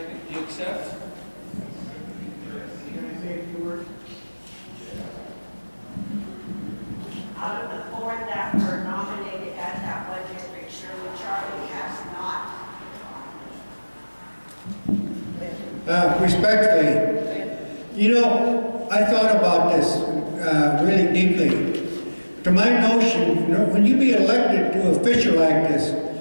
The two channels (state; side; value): inverted; both; correlation -1.00